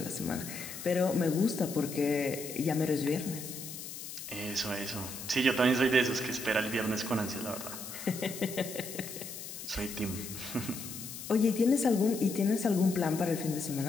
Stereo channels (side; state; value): left; noise; hiss, 10 dB below the sound